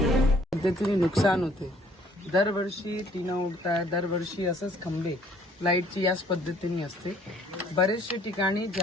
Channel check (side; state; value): both; normal; correlation 0.60